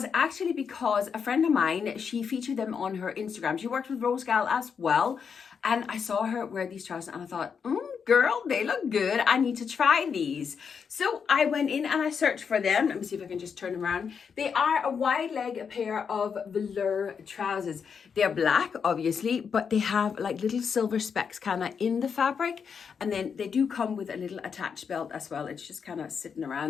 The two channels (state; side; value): quieter; right; 6.5 dB